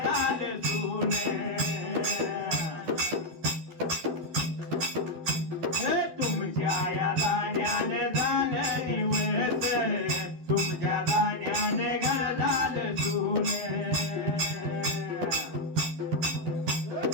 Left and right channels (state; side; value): late; left; 12 ms